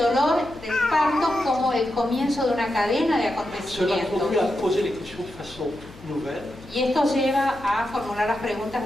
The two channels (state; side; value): noise; left; hum, 22 dB below the sound